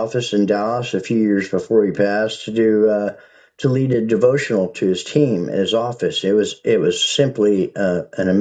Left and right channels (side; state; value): both; identical; correlation 1.00